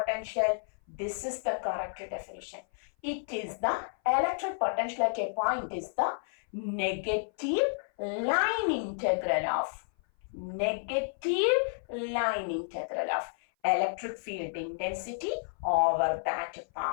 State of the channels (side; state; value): right; silent; 56 dB below the other